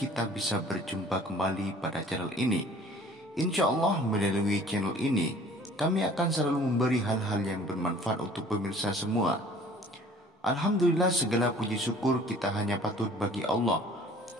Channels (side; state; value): both; normal; correlation 0.51